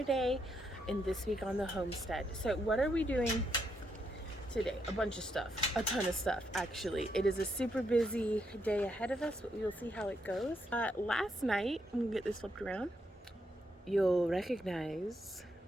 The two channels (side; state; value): both; normal; correlation 0.78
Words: day in This Week on the Homestead. So what are we doing today? A bunch of stuff, a ton of stuff actually. It is a super busy day ahead of us, but we will see how it goes. Last night, I'm gonna get this flipped around. You'll recognize